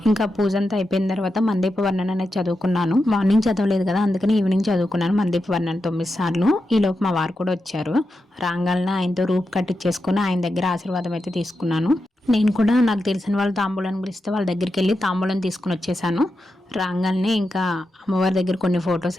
ఇంకా పూజ అంతా అయిపోయిన తర్వాత మందీప వర్ణన అనేది చదువుకున్నాను. మార్నింగ్ చదవలేదు కదా, అందుకని ఈవినింగ్ చదువుకున్నాను మందీప వర్ణన 9 సార్లు. ఈలోపు మా వారు కూడా వచ్చారు. రాంగాలన ఆయనతో రూప్ కట్టించేసుకుని ఆయన దగ్గర ఆశీర్వాదం అయితే తీసుకున్నాను. నేను కూడా నాకు తెలిసిన వాళ్ళు తాంబూలాన్ని పిలిస్తే వాళ్ళ దగ్గరికి వెళ్ళి తాంబూలం తీసుకుని వచ్చేసాను. రాగానే ఇంకా అమ్మవారి దగ్గర కొన్ని ఫొటోస్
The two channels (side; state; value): both; normal; correlation 0.88